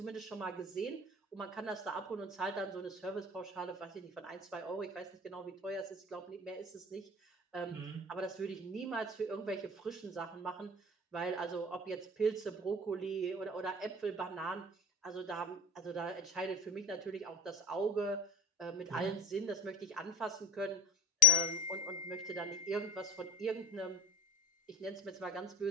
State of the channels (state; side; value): normal; both; correlation 0.27